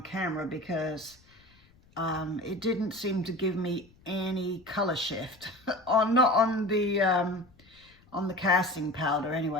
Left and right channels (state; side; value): noise; left; rumble, 29 dB below the sound